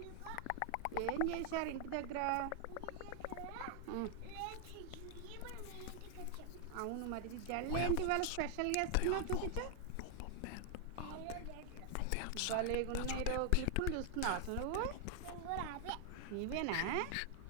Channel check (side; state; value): both; different; correlation 0.00